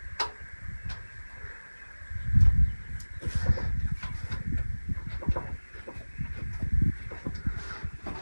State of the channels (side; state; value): both; inverted; correlation -1.00